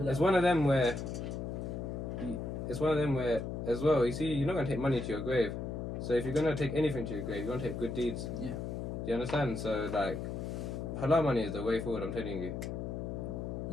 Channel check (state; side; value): noise; left; hum, 4 dB below the sound